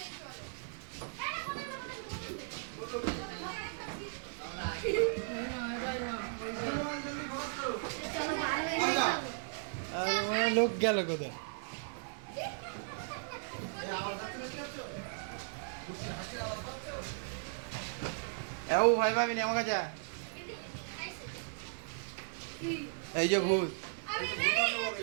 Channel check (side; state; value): left; silent; digital silence